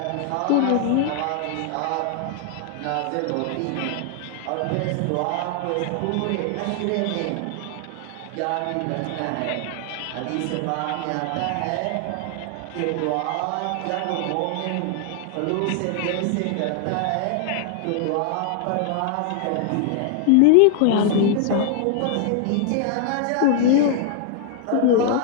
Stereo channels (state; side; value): different; both; correlation 0.00